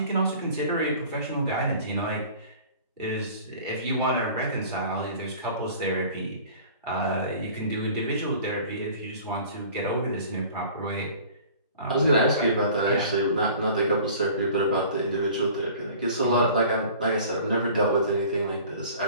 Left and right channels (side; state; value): both; inverted; correlation -0.46